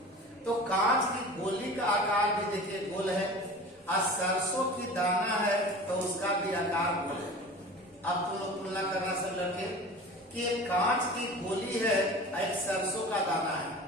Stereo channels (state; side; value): normal; both; correlation 0.37